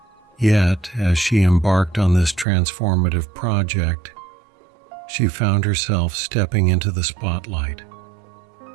Yet, as she embarked on this transformative project, she found herself stepping into the spotlight,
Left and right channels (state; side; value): drops out; left; at 2.5 s